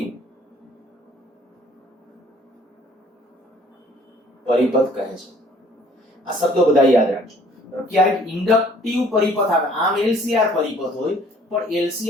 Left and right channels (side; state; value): both; normal; correlation 0.57